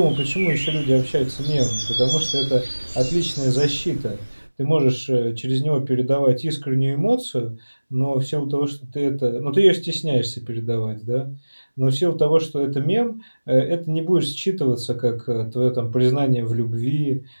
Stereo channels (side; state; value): both; inverted; correlation -1.00